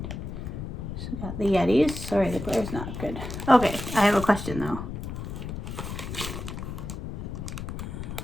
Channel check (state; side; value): noise; left; rumble, 6 dB below the sound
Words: So got the Yetis. Sorry, the glare's not good. Okay, I have a question though.